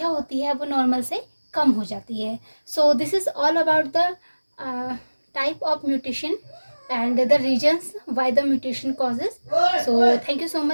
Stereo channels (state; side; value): inverted; both; correlation -1.00